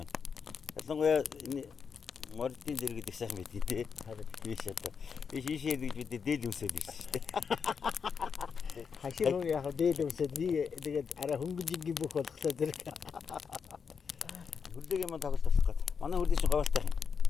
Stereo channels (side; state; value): right; quieter; 6.2 dB